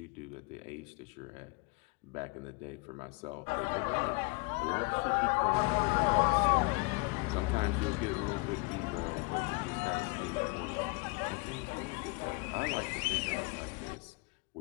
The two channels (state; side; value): quieter; right; 26.9 dB